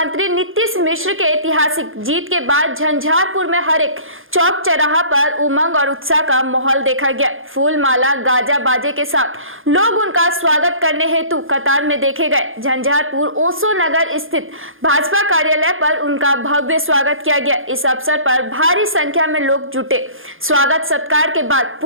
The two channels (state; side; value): late; left; 0.59 ms